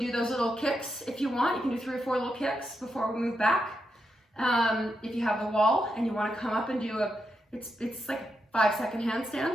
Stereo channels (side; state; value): both; normal; correlation 0.84